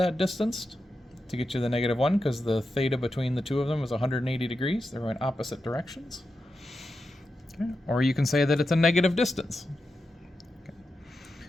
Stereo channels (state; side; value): normal; both; correlation 0.89